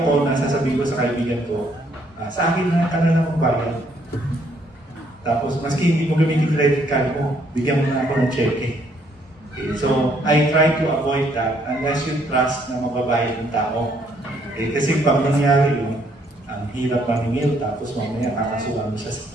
ko na sasabihin ko sa kaibigan ko, sa akin na ka na magbayad. Tapos, maski hindi mo gamitin credit card mo, bigyan mo na ako ng cheque. Okay, so, I try to avoid that unless you trust na mababayad ng tao. Okay, kasi pag nangyari yun, ang hirap maningil, tapos mamaya kakasuhan mo siya sa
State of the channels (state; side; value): normal; both; correlation 0.68